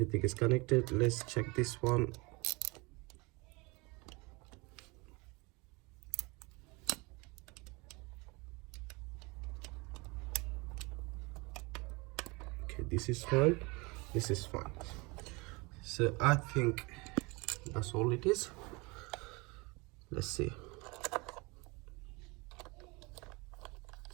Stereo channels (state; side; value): quieter; left; 26.6 dB